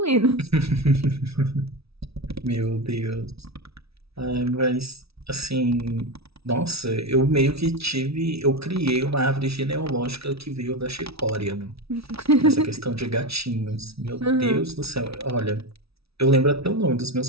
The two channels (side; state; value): left; late; 0.77 ms